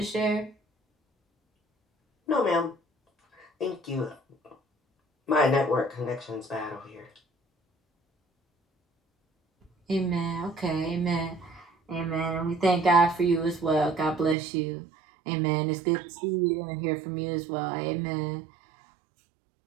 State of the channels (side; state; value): left; drops out; at 14.4 s